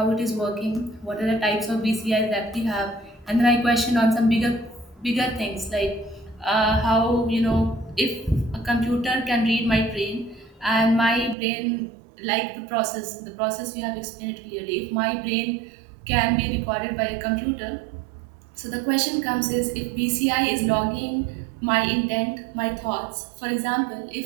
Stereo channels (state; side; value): drops out; left; at 11.4 s